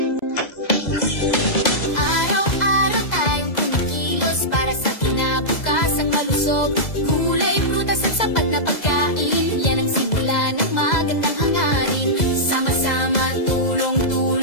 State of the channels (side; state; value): right; late; 2.0 ms